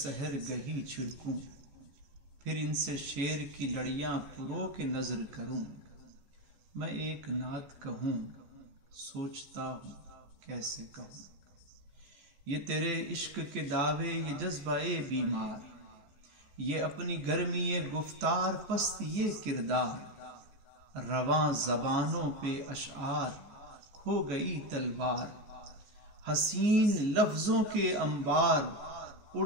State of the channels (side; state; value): left; late; 14 ms